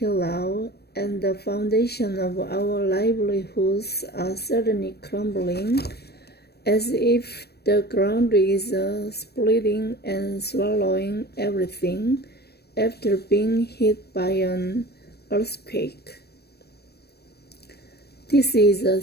now and the foundation of our livelihoods are suddenly crumbling, as if the ground is splitting and swallowing everything after being hit by an earthquake. This is a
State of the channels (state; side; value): late; right; 0.47 ms